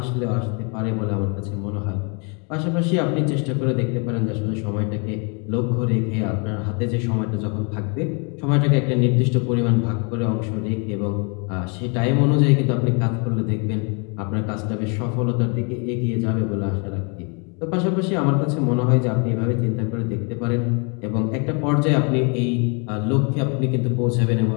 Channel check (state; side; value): quieter; right; 34.9 dB